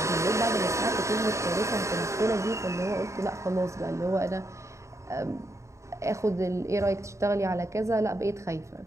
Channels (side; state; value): left; late; 0.14 ms